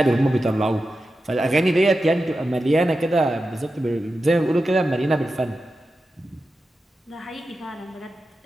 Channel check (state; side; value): normal; both; correlation 0.91